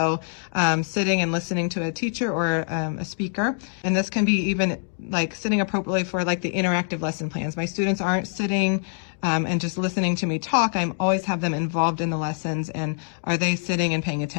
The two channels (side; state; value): right; silent; 58 dB below the other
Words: sitting and listening to a teacher or a speaker. And this can be even like sitting appropriately for like the interactive lesson plans. My students aren't sitting and just listening to me talk. I always have them involved in the lessons, and are they sitting and paying